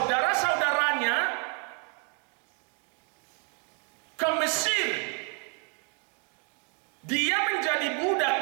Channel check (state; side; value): quieter; left; 38.0 dB